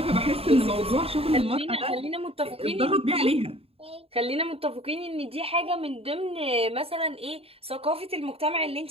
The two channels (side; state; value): left; late; 0.28 ms